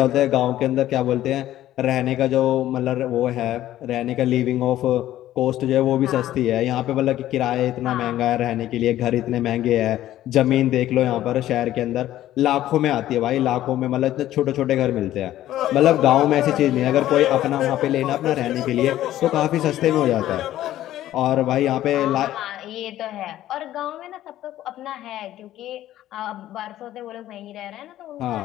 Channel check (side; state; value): right; quieter; 13.5 dB